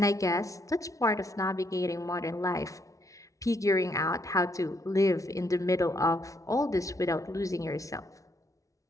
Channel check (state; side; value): late; right; 0.16 ms